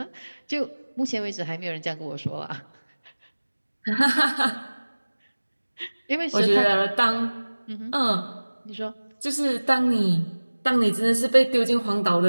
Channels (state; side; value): inverted; both; correlation -1.00